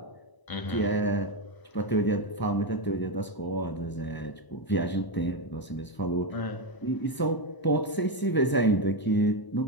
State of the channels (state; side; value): late; right; 1.0 ms